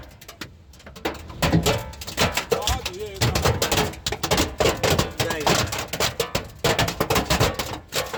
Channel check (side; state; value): both; identical; correlation 1.00